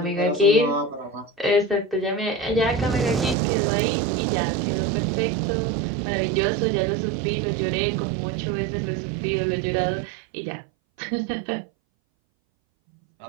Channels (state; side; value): drops out; left; at 3.4 s